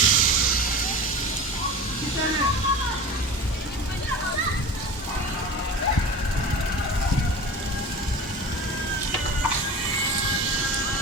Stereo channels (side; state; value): both; normal; correlation 0.33